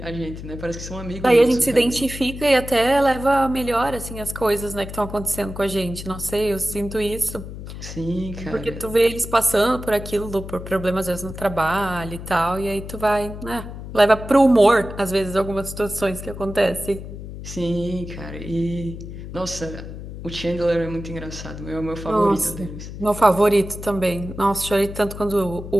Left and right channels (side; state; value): left; noise; hum, 10 dB below the sound